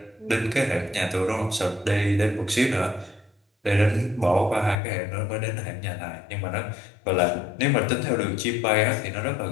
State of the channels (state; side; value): drops out; right; at 4.8 s